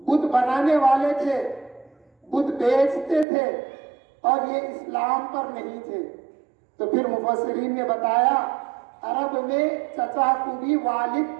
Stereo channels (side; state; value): left; drops out; at 3.2 s